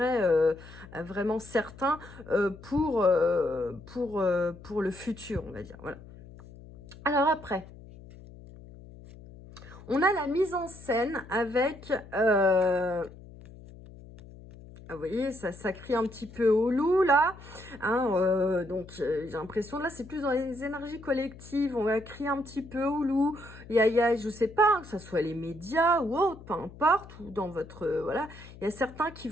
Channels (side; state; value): left; noise; hum, 18 dB below the sound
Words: vraiment certain pour le futur, on va dire. Voilà. Alors après, on a la mise en scène avec... vous voyez, ça crie un petit peu au loup, là. Hein, donc, j'ai l'impression, là, c'est plus dans les énergies collectives. On va crier un petit peu au loup. Il y a, je sais pas, hein, que ce soit les médias ou autre, peu importe, ou dans votre... voilà. Il y a certains qui